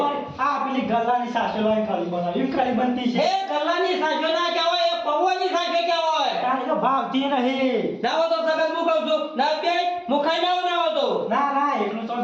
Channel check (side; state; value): both; identical; correlation 1.00